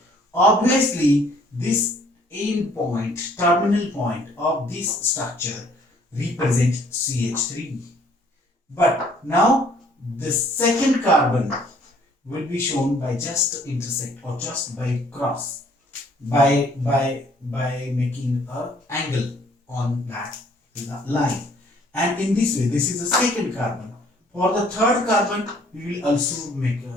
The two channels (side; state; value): both; normal; correlation 0.60